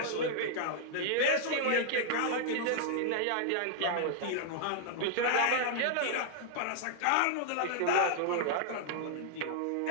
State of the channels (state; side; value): different; both; correlation -0.01